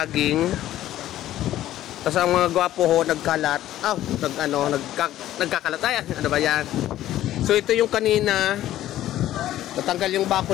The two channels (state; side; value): quieter; right; 13.5 dB